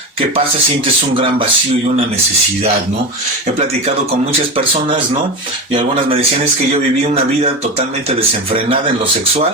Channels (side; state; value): left; late; 1.3 ms